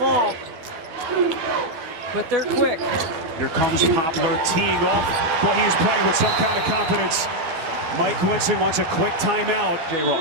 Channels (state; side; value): late; left; 12 ms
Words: but they're quick. Here comes Poplar teeing off. Well, he is playing with some kind of confidence. Mike Winston wants a quick timeout. Jay